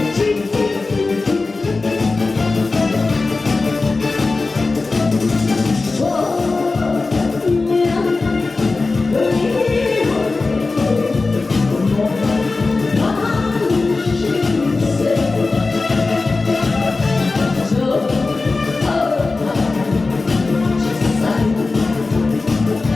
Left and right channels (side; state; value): right; quieter; 3.7 dB